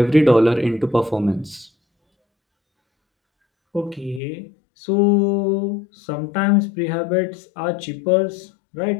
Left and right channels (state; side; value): drops out; right; at 4.2 s